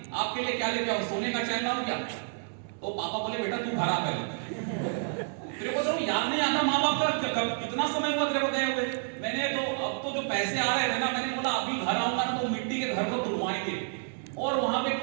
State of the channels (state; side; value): silent; left; 58 dB below the other